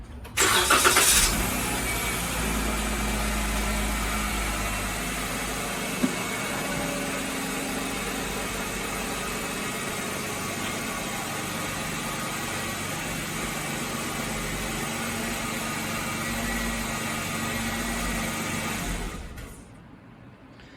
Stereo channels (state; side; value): identical; both; correlation 1.00